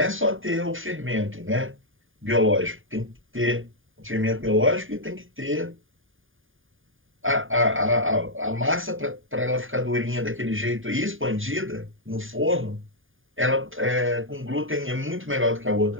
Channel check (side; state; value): left; late; 0.59 ms